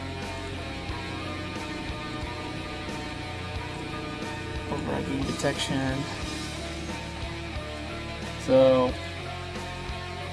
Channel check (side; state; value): both; identical; correlation 1.00